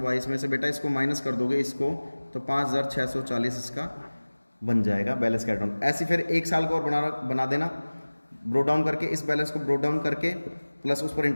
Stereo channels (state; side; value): inverted; both; correlation -1.00